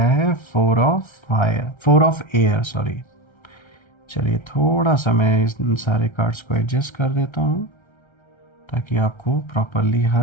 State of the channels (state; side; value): late; right; 1.3 ms